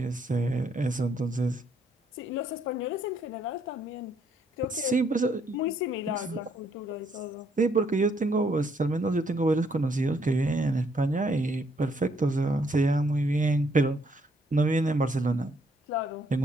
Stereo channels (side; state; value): both; normal; correlation 0.70